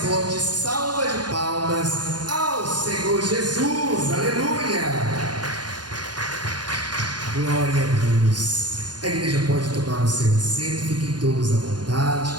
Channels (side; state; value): left; late; 0.70 ms